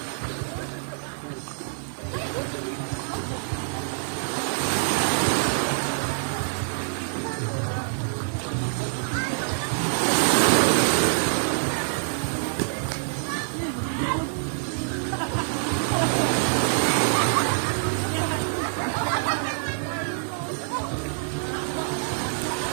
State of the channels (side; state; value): left; silent; digital silence